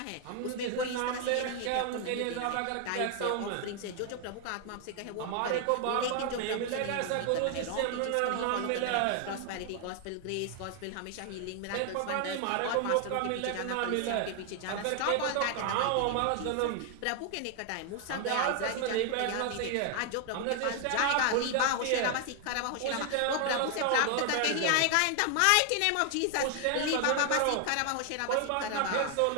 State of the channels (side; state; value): both; different; correlation 0.00